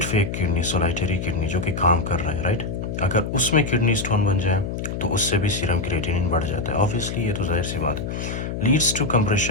एक किडनी, सोलाइटरी किडनी जो कि काम कर रहा है, राइट, अगर उसमें किडनी स्टोन बन जाए तो उससे भी सीरम क्रिएटिनिन बढ़ जाता है, ऑब्वियसली ये तो जाहिर सी बात है। Leads to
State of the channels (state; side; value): noise; left; hum, 4 dB below the sound